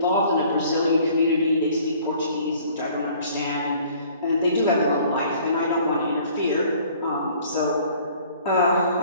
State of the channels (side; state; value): both; inverted; correlation -0.54